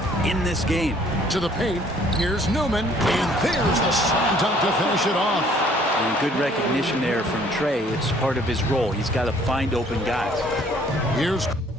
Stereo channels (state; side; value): normal; both; correlation 0.59